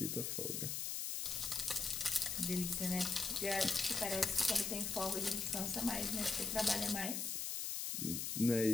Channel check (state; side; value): noise; left; hiss, 2 dB below the sound